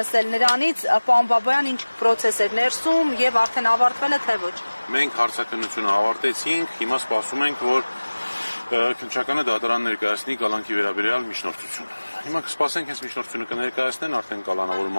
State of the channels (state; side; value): inverted; both; correlation -1.00